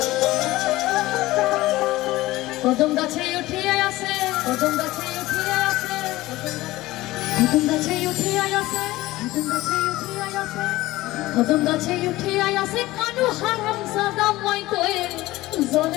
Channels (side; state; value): right; quieter; 18.0 dB